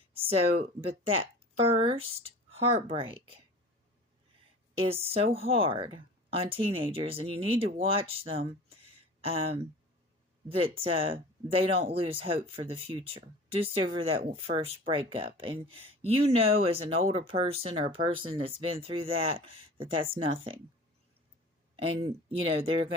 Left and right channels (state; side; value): normal; both; correlation 0.40